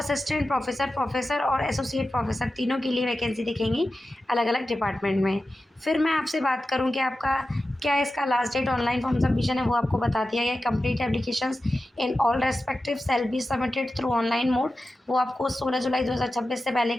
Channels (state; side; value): normal; both; correlation 0.93